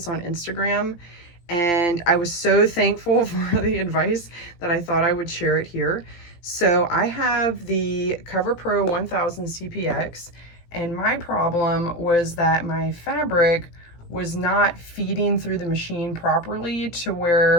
on Instagram. And I was so thankful for the advice that I thought I would share it here. So I have the CoverPro1000 CPX, and my problem was that my fabric was not feeding through the machine properly to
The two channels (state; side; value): late; right; 17 ms